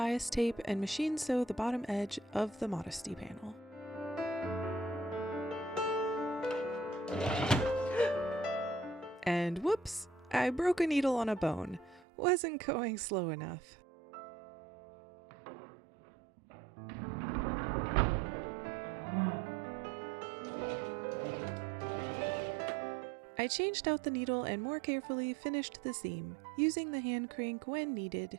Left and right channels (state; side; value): drops out; left; at 12.1 s